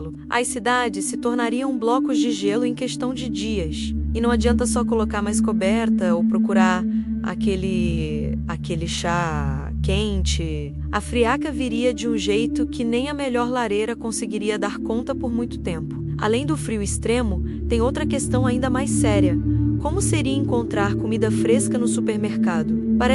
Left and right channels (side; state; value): both; identical; correlation 1.00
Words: As cidades se tornariam blocos de gelo em questão de dias. E não adianta só colocar mais coberta ou procurar aquele chá quente. A friaca viria de um jeito que nem a melhor lareira conseguiria dar conta por muito tempo. Além do frio extremo, tem outra questão ainda mais séria. Como seria encontrar comida fresca no supermercado?